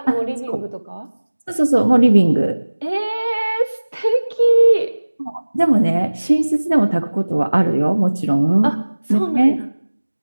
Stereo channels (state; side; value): inverted; both; correlation -1.00